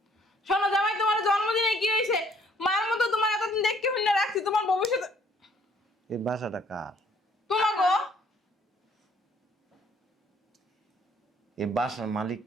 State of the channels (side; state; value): both; normal; correlation 0.62